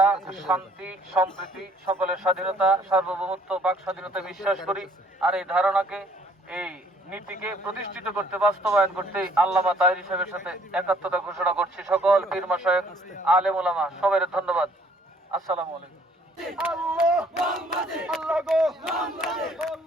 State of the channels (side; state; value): both; normal; correlation 0.61